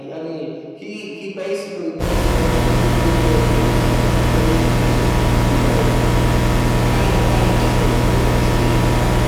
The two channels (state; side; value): identical; both; correlation 1.00